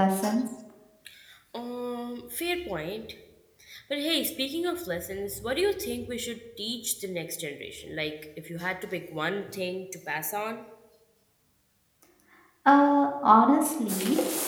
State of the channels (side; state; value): both; identical; correlation 1.00